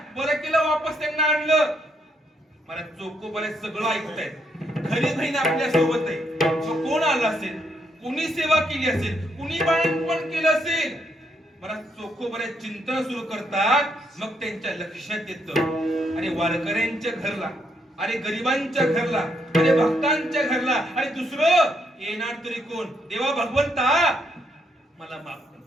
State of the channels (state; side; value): normal; both; correlation 0.75